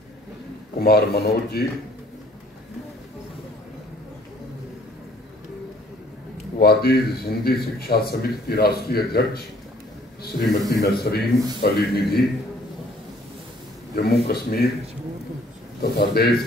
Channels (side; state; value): both; normal; correlation 0.59